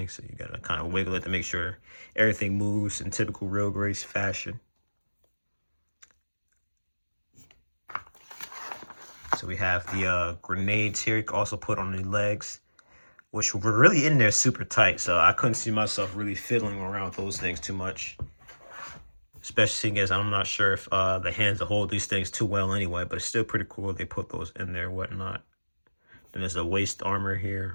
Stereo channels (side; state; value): both; inverted; correlation -1.00